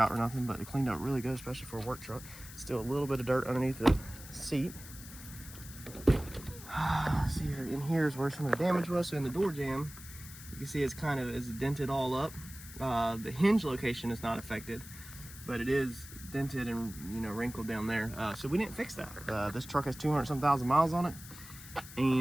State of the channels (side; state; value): left; noise; hiss, 15 dB below the sound